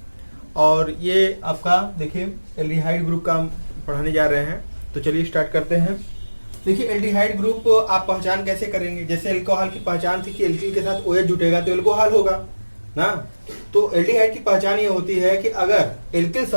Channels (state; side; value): inverted; both; correlation -1.00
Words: और ये आपका देखिए एल्डिहाइड ग्रुप का हम पढ़ाने जा रहे हैं। तो चलिए स्टार्ट करते हैं। देखिए एल्डिहाइड ग्रुप आप पहचान कैसे करेंगे। जैसे एल्कोहल की पहचान थी कि एल्किल के साथ OH जुटेगा तो एल्कोहल होगा ना। तो एल्डिहाइड की पहचान ये होती है कि अगर एल्किल